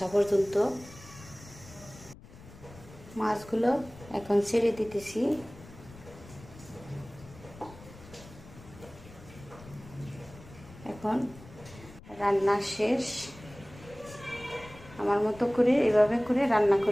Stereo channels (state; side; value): noise; left; rumble, 19 dB below the sound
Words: পর্যন্ত। মাছগুলো এখন ছেড়ে দিতেছি। এখন রান্না শেষ। আমার মতো করে এভাবে করে রান্না